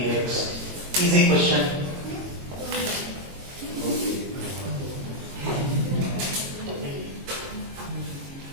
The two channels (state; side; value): late; left; 22 ms